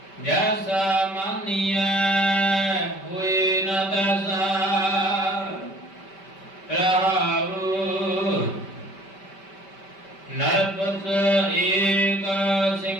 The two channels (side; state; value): right; late; 5.1 ms